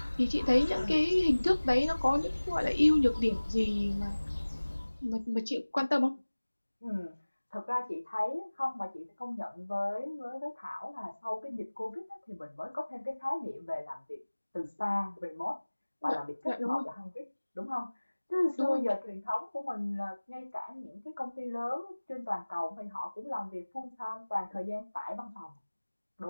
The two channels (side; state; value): both; inverted; correlation -1.00